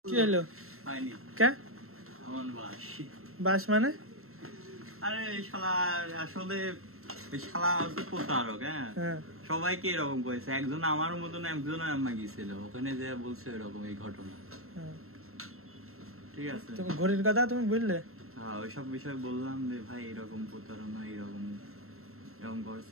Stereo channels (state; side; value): late; left; 0.62 ms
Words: কি হলো? হয়নি কে আমার বাস বাস মানে? আরে শালা আসলে ওই শালা হচ্ছে প্রতারক। হ্যাঁ, সবাইকে এরকম করেছে। একজন আমার মতন একজন আম্মা গেছিল ওখানে যে বলছে এরকম এই ঘটনা। ঠিক আছে, তুমি ঘড়ির কথা তুমি বললে? হ্যাঁ, ওইসব বিষয় বললাম যে ভাই এরকম প্রতারণা এরকম এরকম